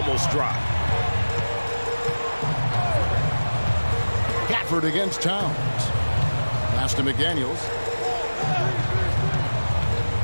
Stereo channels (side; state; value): both; inverted; correlation -1.00